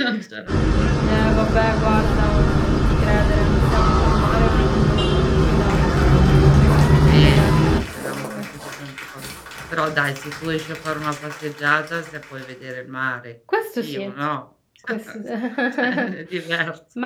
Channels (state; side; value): identical; both; correlation 1.00